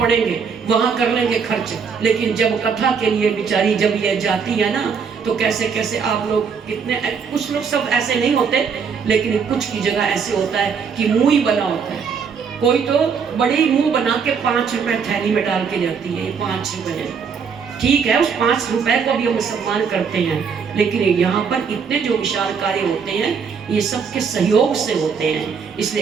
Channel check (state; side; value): quieter; left; 6.2 dB